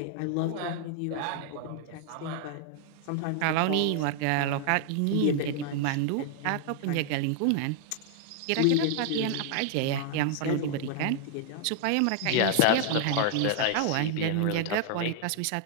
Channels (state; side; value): different; both; correlation 0.00